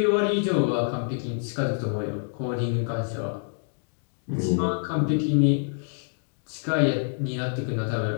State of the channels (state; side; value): silent; right; digital silence